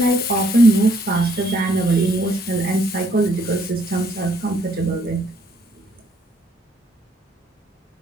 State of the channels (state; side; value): normal; both; correlation 0.67